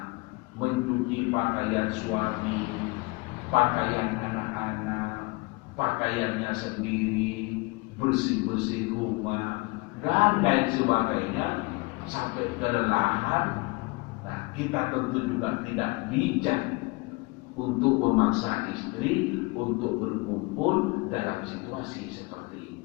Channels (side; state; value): right; quieter; 26.5 dB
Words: mencuci pakaian suami, pakaian anak-anak, pakaiannya sendiri, bersih-bersih rumah, dan lain sebagainya, sampai kelelahan. Nah, kita tentu juga tidak bijak untuk memaksa istri untuk berkumpul dalam situasi seperti